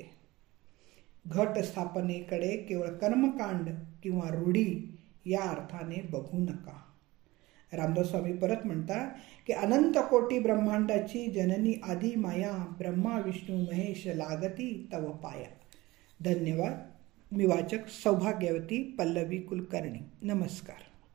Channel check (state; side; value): quieter; left; 19.9 dB